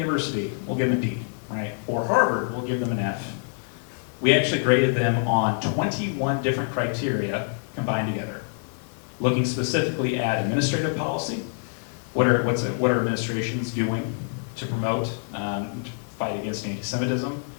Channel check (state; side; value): silent; right; 61 dB below the other